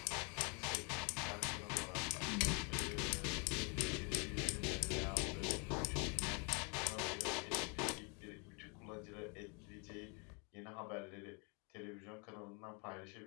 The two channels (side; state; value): right; quieter; 34.3 dB